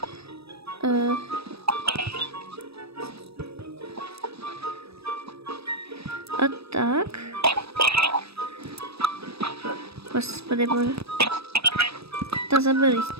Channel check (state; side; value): late; left; 0.78 ms